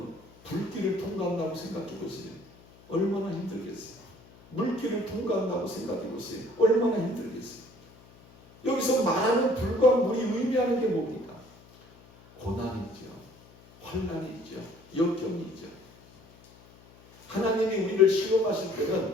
불길을 통과한다고 생각해 보세요. 얼마나 힘들겠어요? 물길을 통과한다고 생각해 보세요. 얼마나 힘들겠어요? 여기서 말하는 불과 물이 의미하는 게 뭡니까? 고난이죠. 환난이죠. 역경이죠. 하나님이 우리를 시험하실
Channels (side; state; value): left; noise; hum, 25 dB below the sound